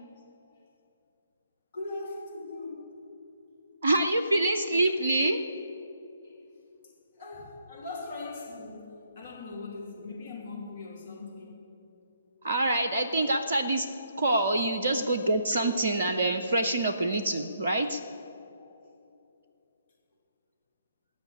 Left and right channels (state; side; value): inverted; both; correlation -0.74